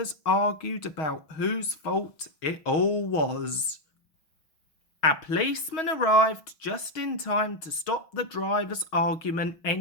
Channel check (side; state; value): right; late; 6.2 ms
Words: argued about whose fault it all was. A policeman arrived just in time to stop the driver's argument